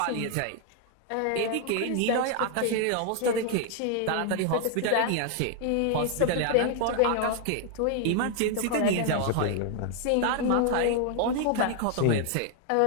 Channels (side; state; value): both; different; correlation 0.00